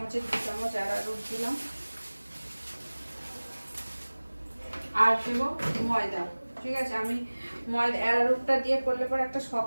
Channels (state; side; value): inverted; both; correlation -1.00